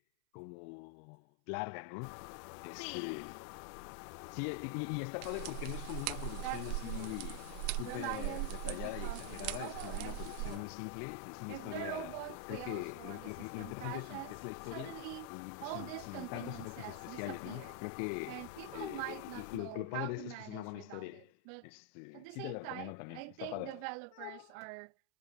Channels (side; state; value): both; different; correlation 0.00